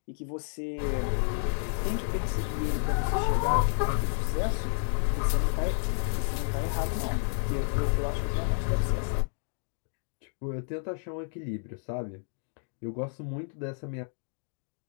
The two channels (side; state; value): right; silent; digital silence